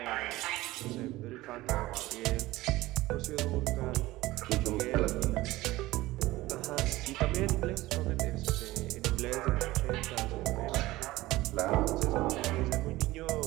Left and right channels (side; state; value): left; quieter; 18.3 dB